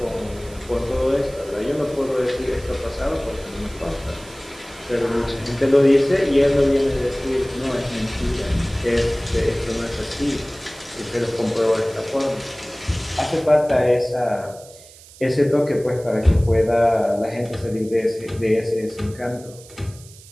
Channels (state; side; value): noise; right; hiss, 21 dB below the sound